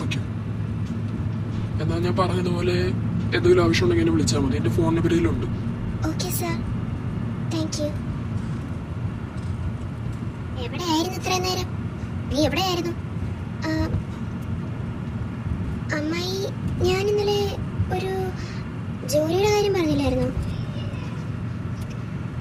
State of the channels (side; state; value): both; identical; correlation 1.00